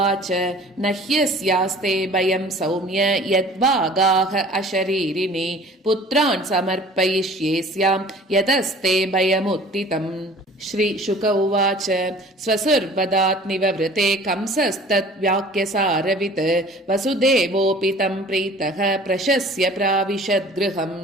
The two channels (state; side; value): normal; both; correlation 0.47